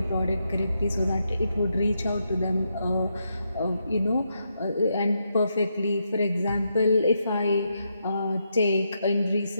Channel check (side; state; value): both; inverted; correlation -0.81